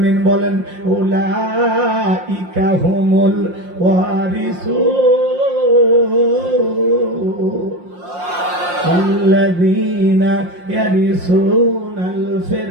বলেন, উলাইকা হুমুল ওয়ারিসুন। আল্লাযীনা ইয়ারিসুনাল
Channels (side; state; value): left; late; 5.7 ms